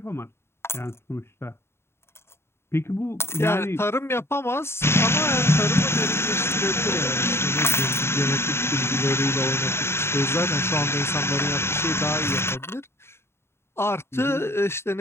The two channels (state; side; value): late; right; 0.12 ms